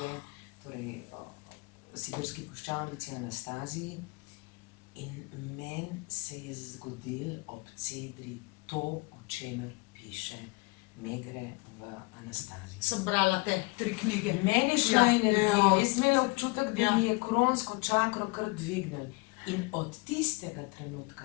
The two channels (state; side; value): quieter; right; 27.1 dB